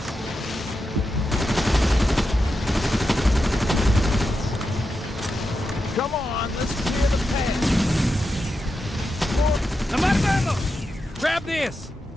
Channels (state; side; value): normal; both; correlation 0.88